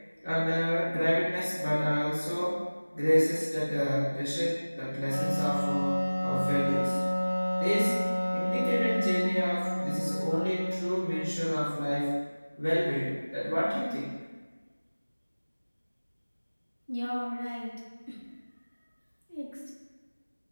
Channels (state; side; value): inverted; both; correlation -1.00